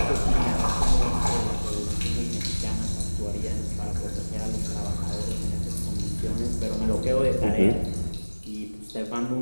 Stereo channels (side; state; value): both; inverted; correlation -1.00